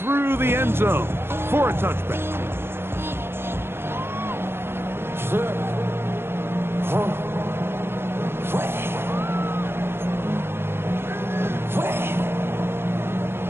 the end zone for a touchback.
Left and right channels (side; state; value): left; late; 0.11 ms